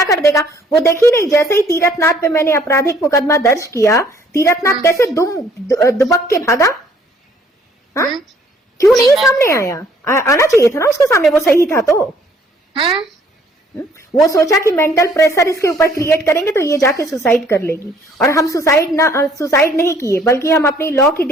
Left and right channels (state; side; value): normal; both; correlation 0.61